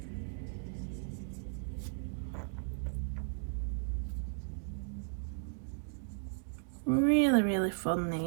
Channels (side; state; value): left; silent; digital silence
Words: Really, really fun,